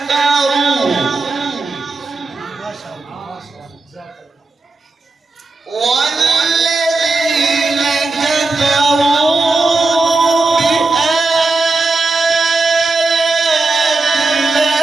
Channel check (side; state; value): left; quieter; 3.6 dB